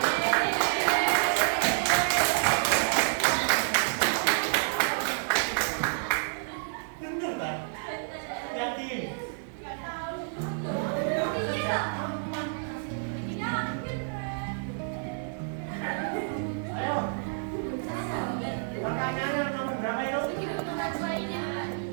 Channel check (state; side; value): silent; left; digital silence